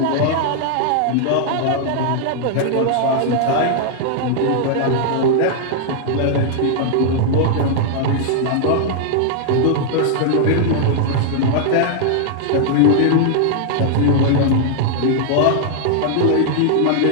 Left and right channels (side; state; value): both; different; correlation -0.01